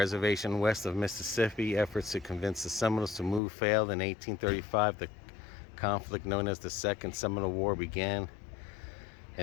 west of Mississippi. Efforts to convince the Seminoles to move failed. In 1835, the conflict known as the Second Seminole War began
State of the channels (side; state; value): right; drops out; at 3.4 s